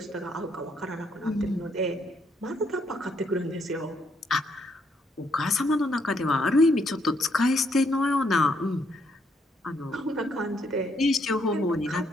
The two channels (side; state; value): both; normal; correlation 0.73